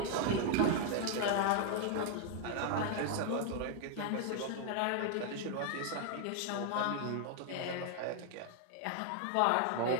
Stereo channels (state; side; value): different; both; correlation 0.00